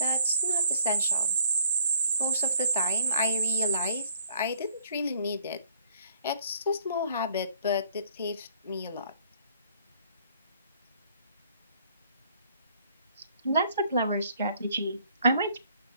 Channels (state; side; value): inverted; both; correlation -0.61